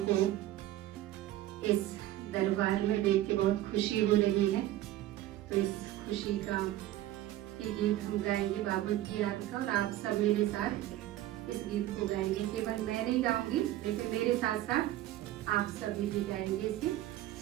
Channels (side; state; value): left; quieter; 14.2 dB